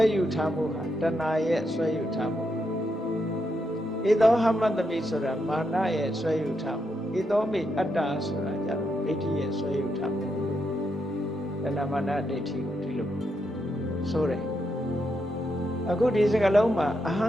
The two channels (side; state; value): both; normal; correlation 0.81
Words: ဲယူထားမှုဟာတဏှာရဲ့ဆွဲယူထားမှုဧသောဟမတမိဆိုတာမာနရဲ့ဆွဲယူထားမှုဧသောမိအတ္တဆိုတာကြတော့ဒိဋ္ဌိရဲ့ဆွဲယူထားမှုတဏှာမာနဒိဋ္ဌိကိုဒီလိုဆိုတယ်အခုဒီစကားလုံးမှာအဟံ